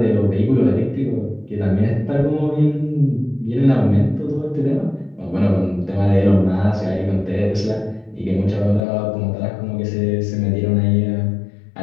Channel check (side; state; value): right; drops out; at 8.8 s